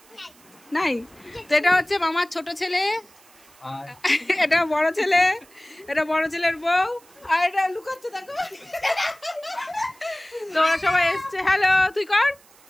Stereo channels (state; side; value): noise; right; hiss, 27 dB below the sound